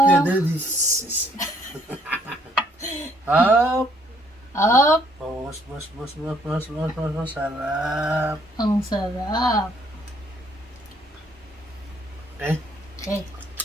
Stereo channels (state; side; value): normal; both; correlation 0.65